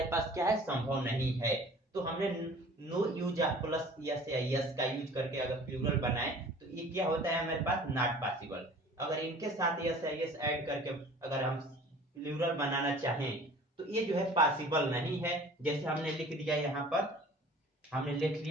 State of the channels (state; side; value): normal; both; correlation 0.47